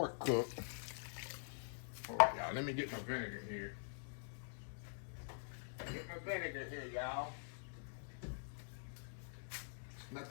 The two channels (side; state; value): right; silent; digital silence